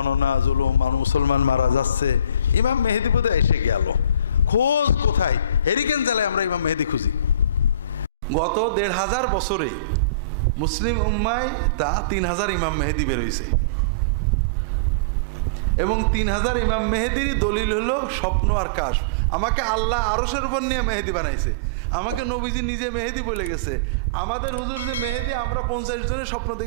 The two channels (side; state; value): both; inverted; correlation -0.34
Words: জুলুম, মুসলমান মারা যাচ্ছে, ইমাম মেহেদি বোধহয় এসে গেল, খোঁজ কোথায়? হেরিকেন জেলায় আমরা ইমাম মেহেদি খুঁজি। গত ১৫০০ বছরে মুসলিম উম্মায় তা ৩,০০০ ইমাম মেহেদি বেরোইছে, এবং ৩,০০০ ইমাম মেহেদির দলিল হলো স্বপ্ন আর কাশ। আমাকে আল্লাহ আরশের উপর নিয়ে মেহেদি বানাইছে, আমাকে নবীজি নিজে মেহেদি বলে গেছে। আমাদের হুজুর যে মেহেদি, আমরা ৫০ জনের স্বপ্ন